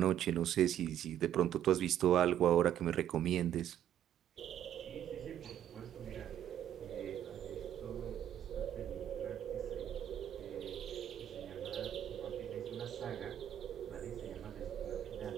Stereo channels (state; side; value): quieter; left; 10.9 dB